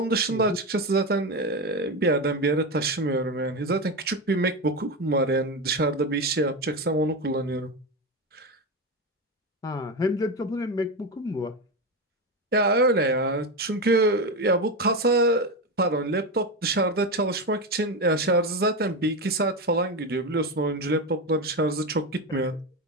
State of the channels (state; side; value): normal; both; correlation 0.16